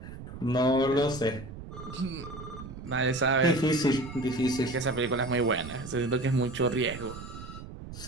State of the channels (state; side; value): noise; right; rumble, 12 dB below the sound